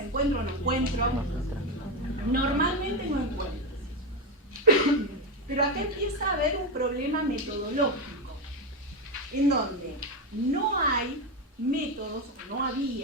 encuentro, no encuentro. Normalmente no encuentro. Pero acá empieza a haber un problema metodológico, en donde no hay métodos, o no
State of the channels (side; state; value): both; normal; correlation 0.11